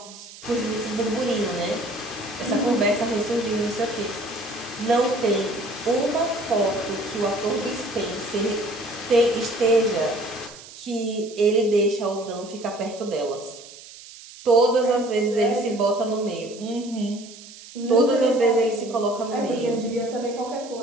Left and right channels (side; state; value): right; noise; hiss, 18 dB below the sound